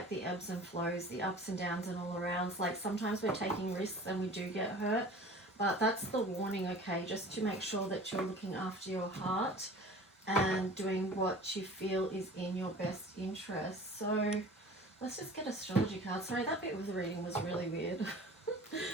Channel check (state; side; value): normal; both; correlation 0.42